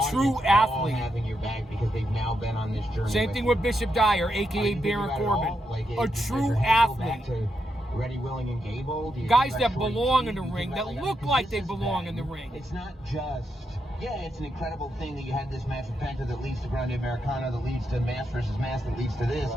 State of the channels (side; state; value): both; normal; correlation 0.83